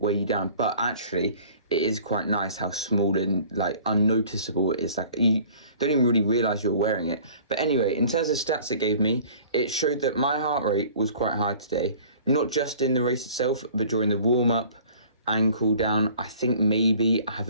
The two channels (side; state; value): both; inverted; correlation -0.49